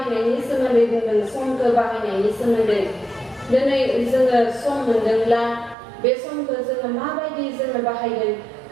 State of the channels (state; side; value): drops out; left; at 5.8 s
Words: सोमोन्दै बुंदों समखौ बाहायनायनि सोमोन्दै दिनै जोङो सम मोनदोंब्ला बे समखौ जोङो माबायदि जोङो बाहायगोन